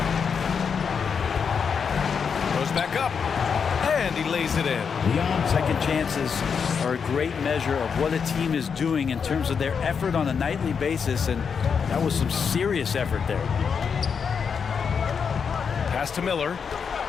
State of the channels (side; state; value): right; quieter; 6.3 dB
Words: Back up, and he lays it in. Second chances are a great measure of what a team is doing in terms of their effort on a nightly basis, and that was some serious effort there. Pass to Miller.